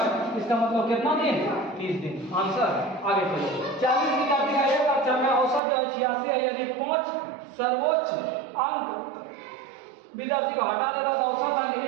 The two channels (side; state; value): left; drops out; at 5.6 s